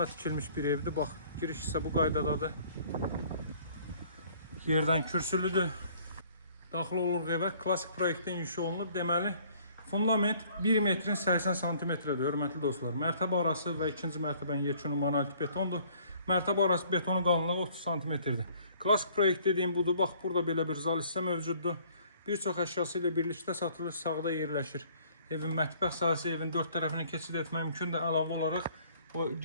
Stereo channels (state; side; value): inverted; both; correlation -0.58